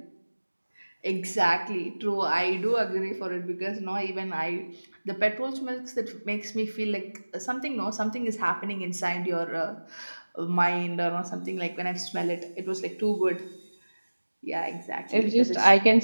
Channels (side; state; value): both; inverted; correlation -1.00